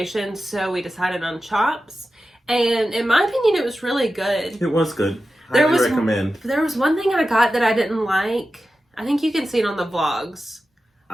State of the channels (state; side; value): normal; both; correlation 0.93